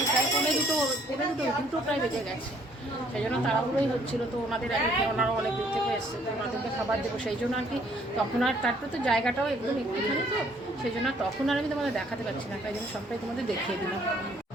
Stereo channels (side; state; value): both; normal; correlation 0.63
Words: প্রায় দুটো প্রায় বেজে গেছে, সেই জন্য তাড়াহুড়োই হচ্ছিল। তো ওনাদের ওনারা অনেক দূর থেকে এসছে, তো ওনাদেরকে খাবার দেবো, সেই জন্য আর কি তখন আর তারপরে তো জায়গাটাও একদম একটুখানি, তো সেই জন্য তখন আর আমি তোমাদের দেখাতে পারছি না, তাই জন্য সবটাই তোমাদের দেখিয়ে দিলাম।